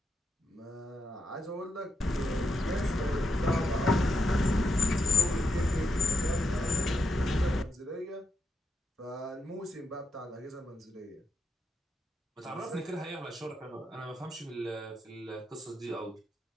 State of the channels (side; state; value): both; normal; correlation 0.83